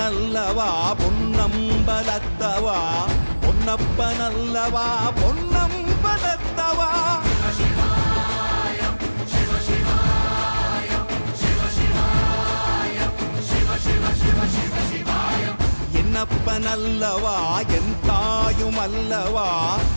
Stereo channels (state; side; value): inverted; both; correlation -1.00